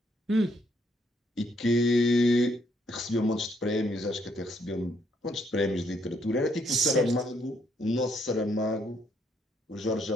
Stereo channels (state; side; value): normal; both; correlation 0.71